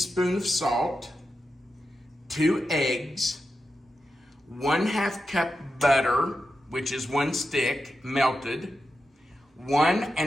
of salt, 2 eggs, 1/2 cup butter, which is 1 stick melted, 1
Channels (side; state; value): both; normal; correlation 0.89